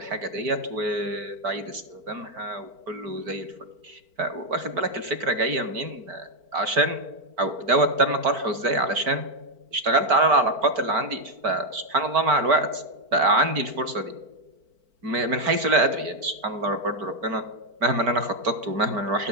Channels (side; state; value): left; late; 4.5 ms